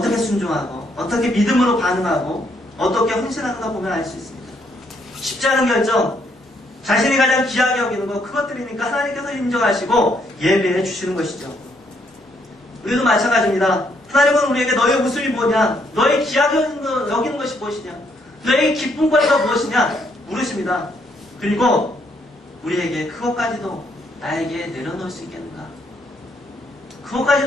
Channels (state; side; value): normal; both; correlation 0.72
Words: 순종하고 어떻게 믿음으로 반응하고 어떻게 헌신하는가 보면 알 수 있습니다. 쉽지 않은 결정, 자신이 가장 귀하게 여기는 것, 그것들이니까 하나님께서 인정하시고 예배해 주시는 것이죠. 우리도 마찬가지입니다. 하나님은 우리에게 너의 웃음이 뭐냐, 너의 귀하게 여기는 것이 무엇이냐, 너의 기쁨거리가 무엇이냐 물으십니다. 그리고 우리에게 그것까지도 나에게 내려놓을 수 있겠는가,